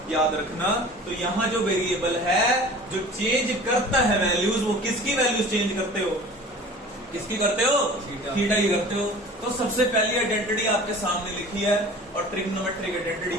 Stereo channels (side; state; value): both; normal; correlation 0.42